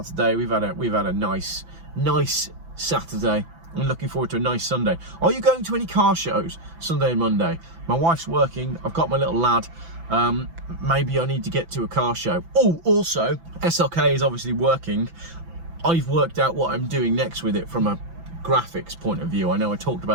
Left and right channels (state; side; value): late; left; 6.0 ms